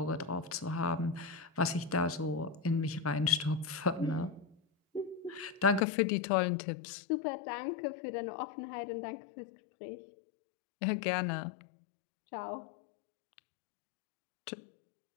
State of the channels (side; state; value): right; drops out; at 5.9 s